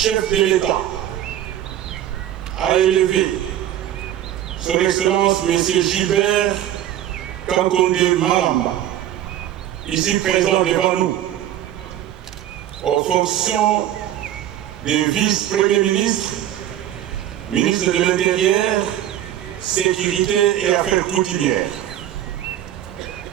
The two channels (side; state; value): left; quieter; 12.0 dB